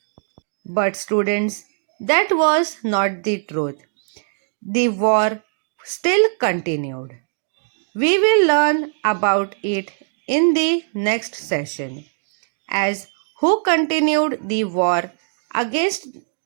But students, that was not the truth. The war still continued. We will learn about it in the next session, as who continued the war against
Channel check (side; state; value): left; silent; digital silence